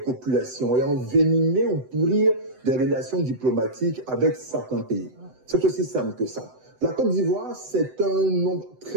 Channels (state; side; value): late; left; 7.9 ms